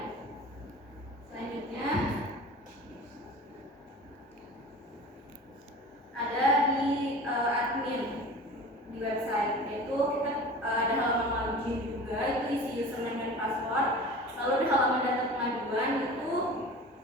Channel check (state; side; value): normal; both; correlation 0.38